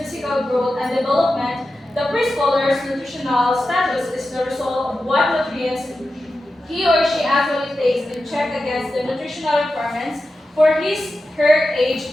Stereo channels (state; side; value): normal; both; correlation 0.91